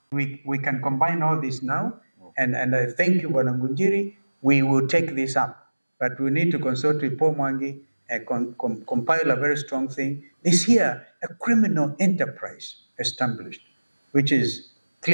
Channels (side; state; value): both; inverted; correlation -1.00